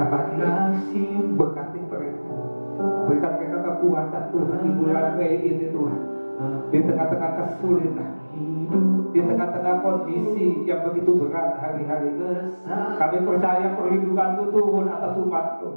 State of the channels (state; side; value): inverted; both; correlation -1.00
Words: pagi ini. Berkati mereka. Berikan mereka kekuatan Tuhan di bulan Mei ini Tuhan. Di tengah-tengah kesulitan, di tengah-tengah kondisi yang begitu berat hari-hari ini, kami percaya perlindungan-Mu turun atas